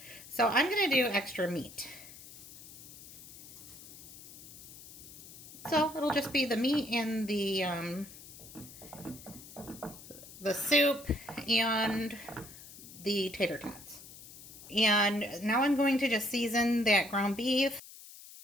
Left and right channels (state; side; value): noise; left; hiss, 16 dB below the sound